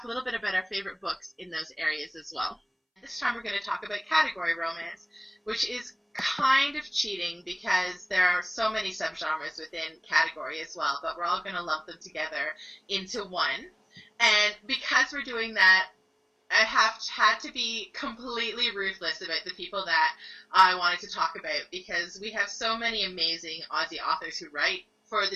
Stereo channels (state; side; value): identical; both; correlation 1.00